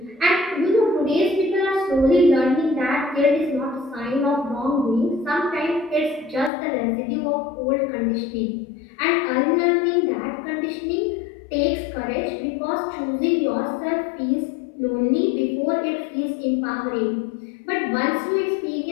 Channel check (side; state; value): right; drops out; at 6.5 s